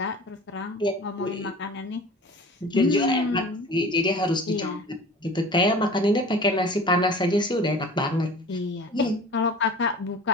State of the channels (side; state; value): both; normal; correlation 0.41